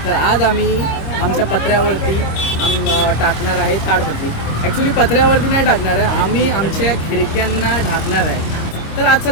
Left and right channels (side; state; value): right; late; 26 ms